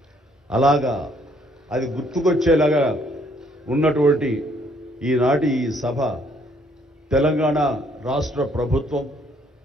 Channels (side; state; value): both; normal; correlation 0.66